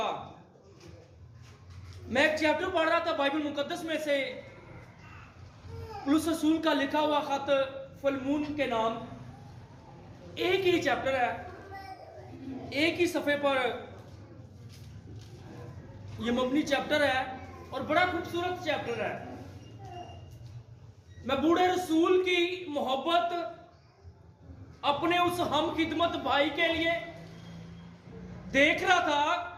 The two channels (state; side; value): identical; both; correlation 1.00